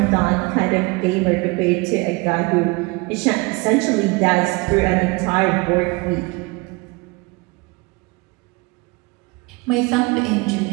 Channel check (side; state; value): left; quieter; 26.2 dB